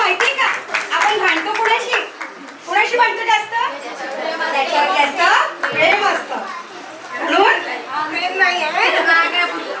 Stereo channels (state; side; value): identical; both; correlation 1.00